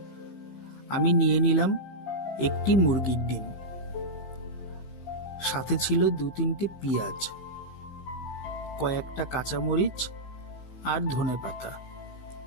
আমি নিয়ে নিলাম একটি মুরগির ডিম, সাথে ছিল 2-3টে পেঁয়াজ, কয়েকটা কাঁচামরিচ আর ধনেপাতা।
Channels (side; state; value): right; late; 15 ms